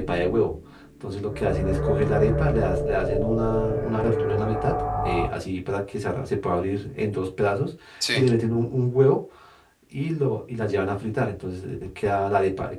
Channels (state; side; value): identical; both; correlation 1.00